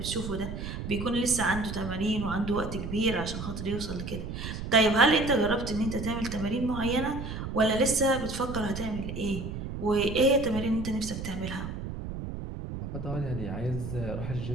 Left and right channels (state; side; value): noise; right; rumble, 7 dB below the sound